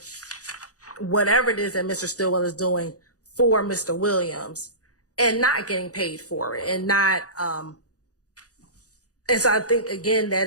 whatever it is that Mr. Stillwell is doing for Mr. Williams and not getting paid for it, and not, and so I think, again, that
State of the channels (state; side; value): late; right; 0.67 ms